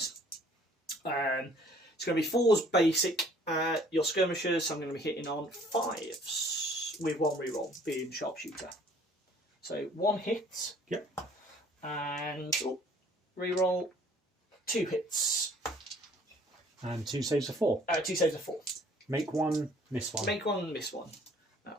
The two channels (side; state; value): both; normal; correlation 0.57